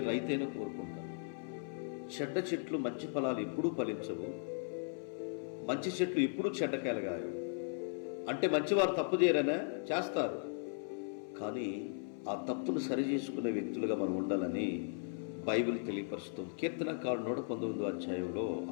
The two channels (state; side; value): silent; right; 53 dB below the other